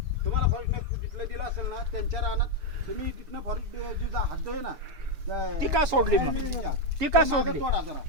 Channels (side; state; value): left; late; 7.1 ms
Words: तुम्हाला फॉरेस्ट जिथलं दिलं असेल ना त्यांच्या रानात तुम्ही तिथनं फॉरेस्ट जी हद्द आहे ना ती का सोडली, ती का सोडली तोडा जरा